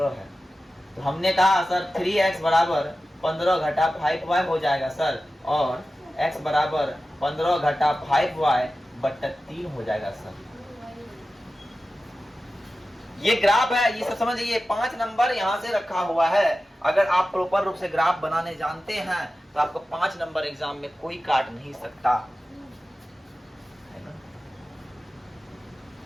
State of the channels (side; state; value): both; normal; correlation 0.94